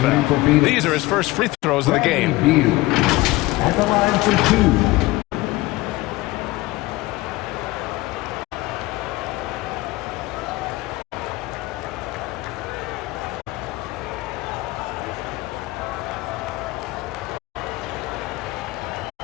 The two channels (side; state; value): right; quieter; 19.7 dB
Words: These are his first free throws of the game. Beal at the line for two.